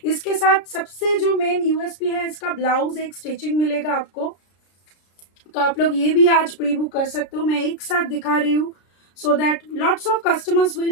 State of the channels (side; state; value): right; late; 33 ms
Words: इसके साथ सबसे जो मेन यूएसपी है, इसका ब्लाउज एक स्टिचिंग मिलेगा आपको, तो आप लोग ये भी आज प्री बुक कर सकते हो। मैं एक साथ दिखा रही हूँ so that lots of customers